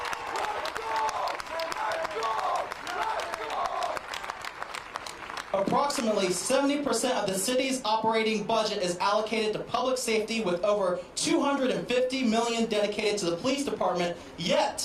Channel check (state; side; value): identical; both; correlation 1.00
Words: Approximately 70% of the city's operating budget is allocated to public safety, with over $250 million dedicated to the police department,